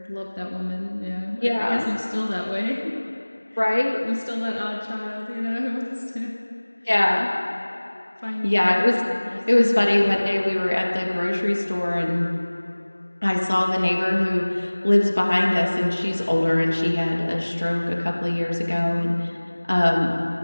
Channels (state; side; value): inverted; both; correlation -1.00